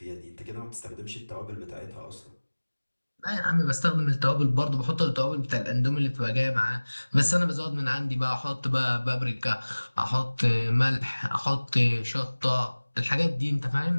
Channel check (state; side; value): inverted; both; correlation -1.00